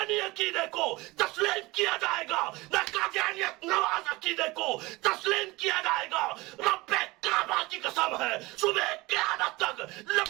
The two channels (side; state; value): left; quieter; 21.7 dB